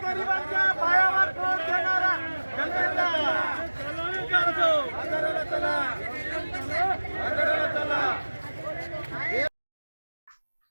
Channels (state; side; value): inverted; both; correlation -1.00